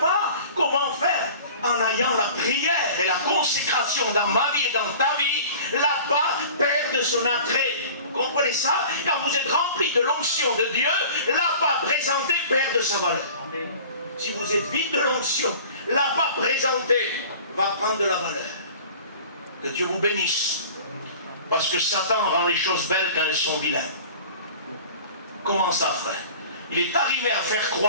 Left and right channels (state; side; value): inverted; both; correlation -0.43